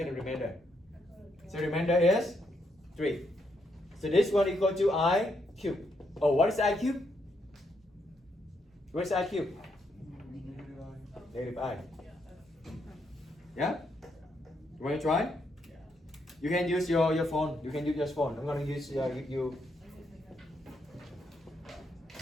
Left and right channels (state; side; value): normal; both; correlation 0.77